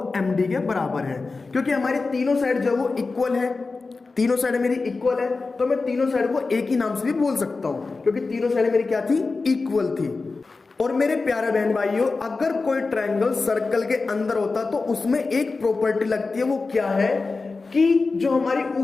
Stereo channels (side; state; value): right; quieter; 3.9 dB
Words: एम डी के बराबर है, क्योंकि हमारी तीनों साइड जो वो इक्वल है, तीनों साइड मेरी इक्वल है, तो मैं तीनों साइड को एक ही नाम से भी बोल सकता हूं, क्योंकि तीनों साइड मेरी क्या थी, इक्वल थी। और मेरे प्यारे बहन भाइयों, अगर कोई ट्रायंगल सर्कल के अंदर होता तो उसमें एक प्रॉपर्टी लगती है, वो क्या है कि जो हमारी